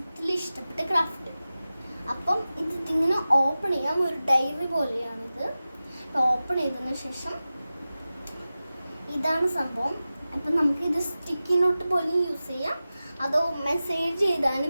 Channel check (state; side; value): inverted; both; correlation -0.95